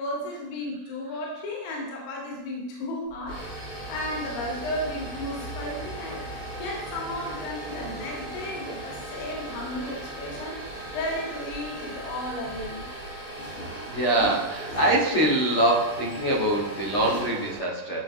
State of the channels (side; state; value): right; late; 20 ms